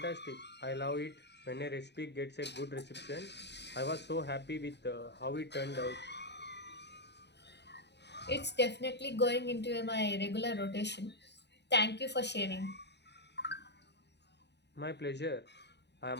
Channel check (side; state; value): right; late; 0.50 ms